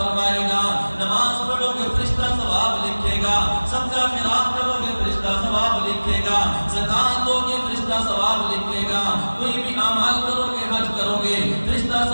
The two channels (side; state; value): both; inverted; correlation -1.00